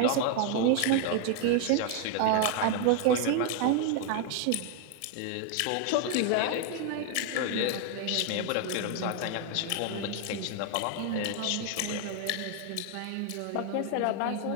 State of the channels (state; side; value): different; both; correlation 0.01